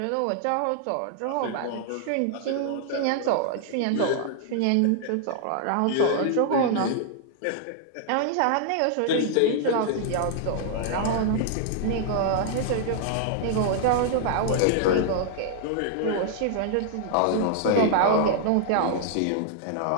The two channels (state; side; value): different; both; correlation -0.01